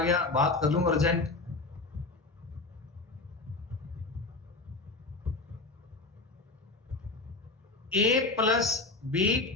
बात कर लूंगा urgent. A plus B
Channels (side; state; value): right; quieter; 3.4 dB